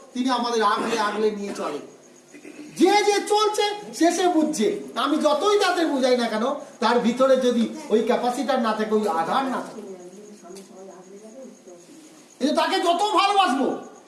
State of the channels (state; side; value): identical; both; correlation 1.00